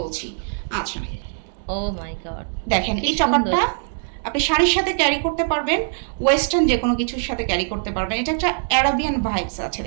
বলছি। আচ্ছা, ও মাই গড, দেখেন কি এই সুন্দর। চপারটা আপনি শাড়ির সাথে ক্যারি করতে পারবেন, ওয়েস্টার্ন যে কোনো কিছুর সাথে ক্যারি করতে পারবেন। এটা একটা অ্যারাবিয়ান ভাইবস আছে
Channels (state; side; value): silent; left; digital silence